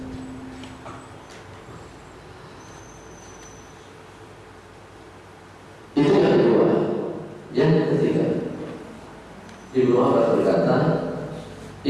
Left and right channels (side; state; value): both; identical; correlation 1.00